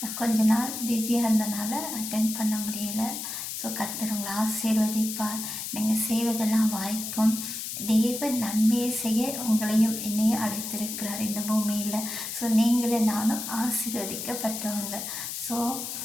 கொஞ்ச நாள் பிஸியாக இருந்தனால அட்டென்ட் பண்ண முடியலை. ஸோ கர்த்தர் உங்களை ஆசீர்வதிப்பார். நீங்கள் செய்வதெல்லாம் வாய்க்கும். தேவன் நன்மையை செய்ய உங்களையும் என்னையும் அழைத்திருக்கிறார் இந்த பூமியில். ஸோ நீங்களும் நானும் ஆசீர்வதிக்கப்பட்டவங்க. ஸோ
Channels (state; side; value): noise; left; hiss, 6 dB below the sound